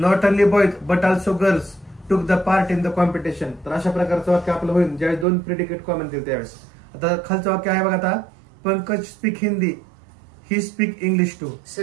only boys but also girls took the part in the competition. तर अशा प्रकारचं वाक्य आपलं होईल ज्यावेळेस दोन प्रेडिकेट कॉमन दिले त्यावेळेस. आता खालचं वाक्य आहे बघा, आता Pankaj speak Hindi he speak English too.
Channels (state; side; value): drops out; left; at 5.2 s